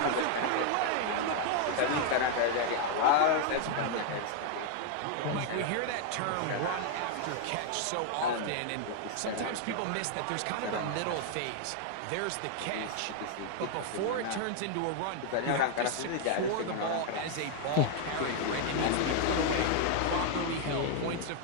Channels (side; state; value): both; different; correlation 0.00